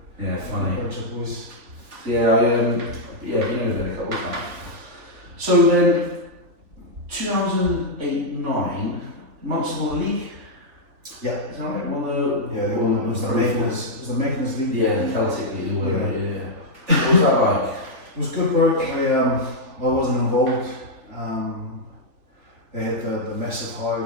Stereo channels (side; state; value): left; late; 3.4 ms